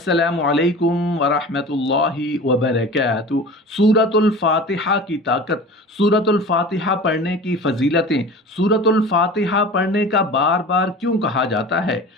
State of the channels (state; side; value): normal; both; correlation 0.37